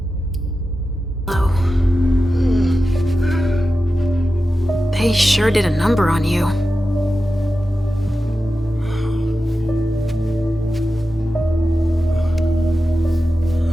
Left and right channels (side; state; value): both; normal; correlation 0.92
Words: They sure did a number on you.